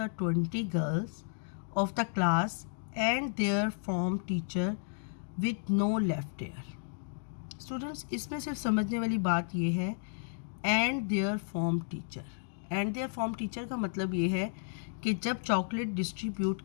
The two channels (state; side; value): silent; right; digital silence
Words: 20 girls of the class and their form teacher with no left there. Students, इसमें सिर्फ समझने वाली बात ये है and their form teacher. And their form teacher का मतलब ये है कि जब चॉकलेट डिस्ट्रीब्यूट